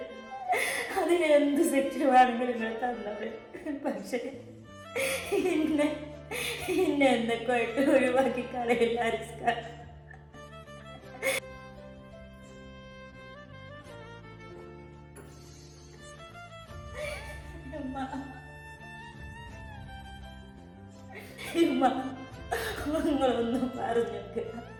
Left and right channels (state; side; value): identical; both; correlation 1.00